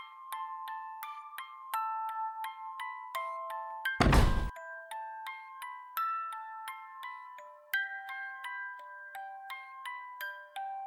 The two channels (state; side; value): identical; both; correlation 1.00